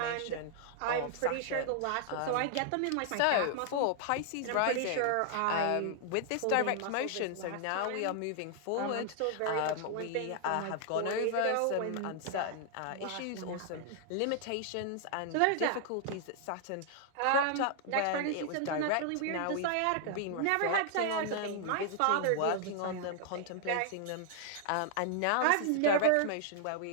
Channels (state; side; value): different; both; correlation 0.00